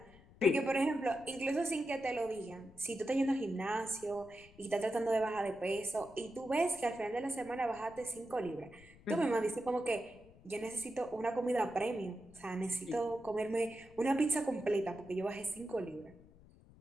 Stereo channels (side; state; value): left; noise; rumble, 23 dB below the sound